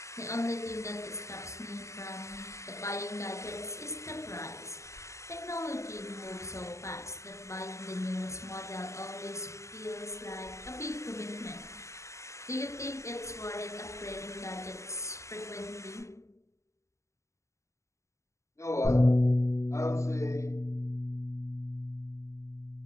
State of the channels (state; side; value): late; right; 0.14 ms